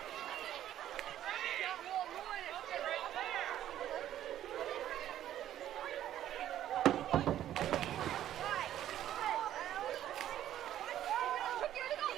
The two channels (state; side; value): quieter; left; 11.9 dB